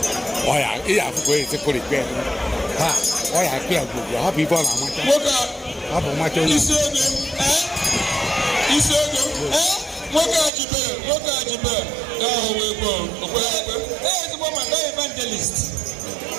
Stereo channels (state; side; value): drops out; left; at 10.5 s